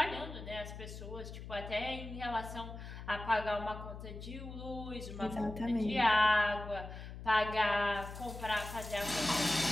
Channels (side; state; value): left; noise; hum, 11 dB below the sound